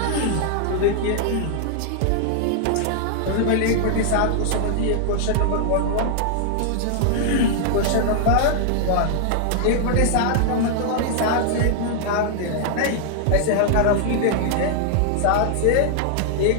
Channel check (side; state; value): both; different; correlation -0.01